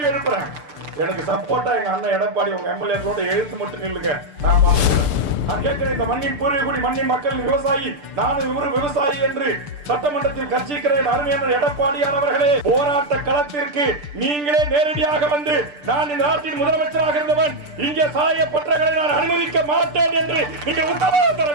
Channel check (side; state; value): left; late; 6.8 ms